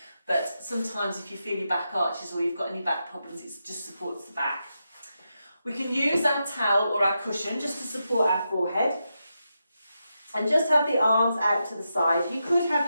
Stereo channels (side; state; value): both; inverted; correlation -0.86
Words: but sometimes if you feel your back arches or you've got any back problems, it just supports the back. We can use our towel or our cushion just to support our forehead and just have the arms out to the side. You could have